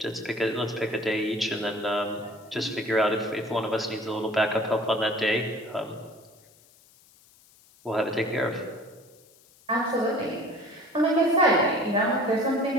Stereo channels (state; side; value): noise; left; hiss, 28 dB below the sound